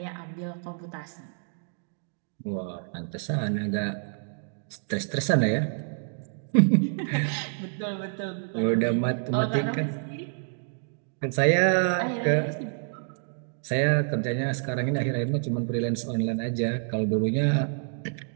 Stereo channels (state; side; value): silent; left; digital silence